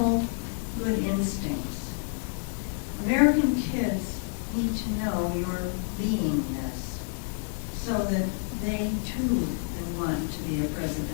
good instincts. American kids need to know your beingness so that they too can want to be a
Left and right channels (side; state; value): right; silent; 59 dB below the other